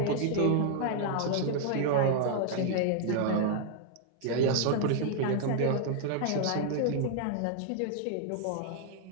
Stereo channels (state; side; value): different; both; correlation 0.00